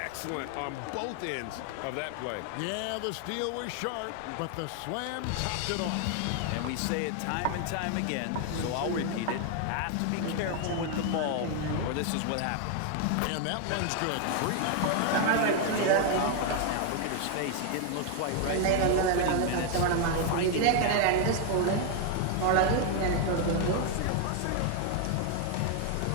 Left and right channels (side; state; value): both; different; correlation 0.00